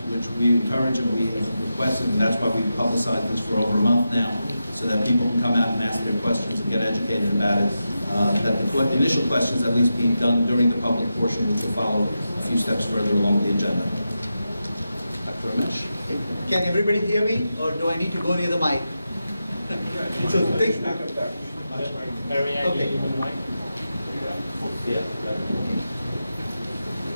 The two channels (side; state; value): both; inverted; correlation -0.89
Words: which we encourage and we have requested, and that's why we've publicized this for over a month now, so that people can come out and ask their questions and get educated about it, that the initial questions at least be done during the public portion, which will follow a few steps further along the agenda. Dr. Ramesh. Can everybody hear me, or do I need to go near the mic? So think. Okay.